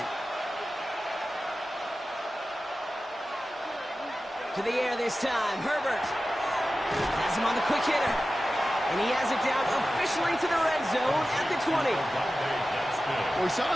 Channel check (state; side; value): normal; both; correlation 0.94